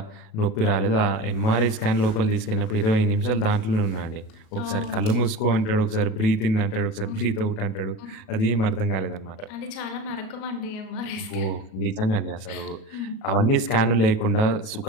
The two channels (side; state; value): right; late; 37 ms